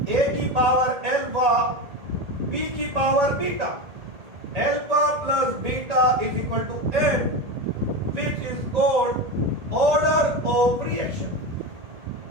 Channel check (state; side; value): late; left; 1.8 ms